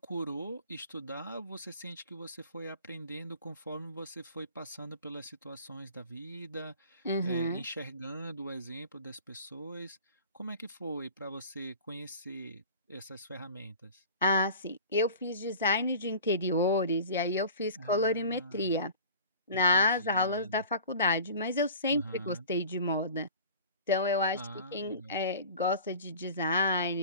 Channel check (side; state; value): both; inverted; correlation -0.41